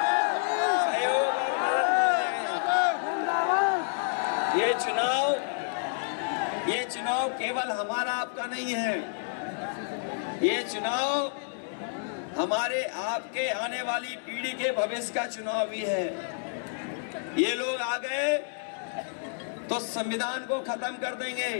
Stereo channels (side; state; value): right; silent; digital silence